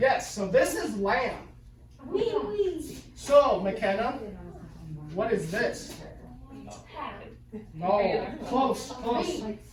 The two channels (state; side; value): identical; both; correlation 1.00